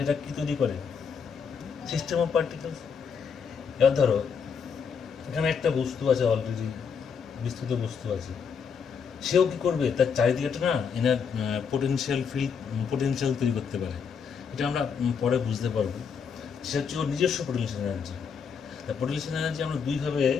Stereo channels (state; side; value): quieter; right; 6.4 dB